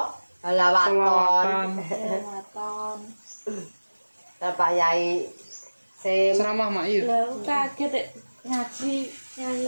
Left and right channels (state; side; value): inverted; both; correlation -1.00